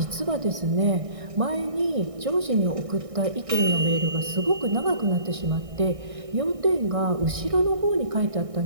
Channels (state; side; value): late; left; 1.6 ms